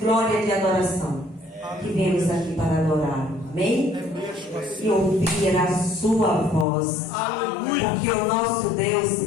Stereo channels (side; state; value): right; drops out; at 6.7 s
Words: e de adoração. Que viemos aqui para adorá-lo. Amém? E ouvir a sua voz. Aleluia. Porque o nosso Deus,